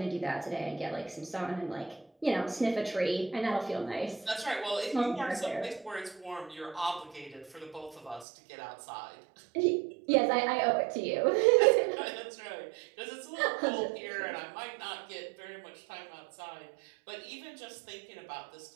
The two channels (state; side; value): drops out; left; at 8.2 s